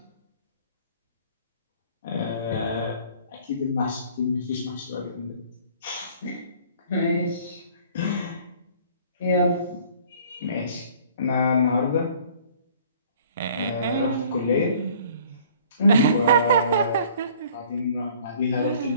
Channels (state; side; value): inverted; both; correlation -0.54